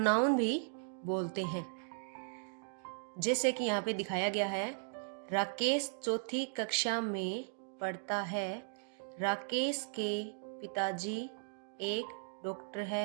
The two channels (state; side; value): silent; left; digital silence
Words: भी बोलते हैं। जैसे कि यहाँ पे दिखाया गया है, राकेश चौथी कक्षा में पढ़ता है। राकेश के पिताजी एक डॉक्टर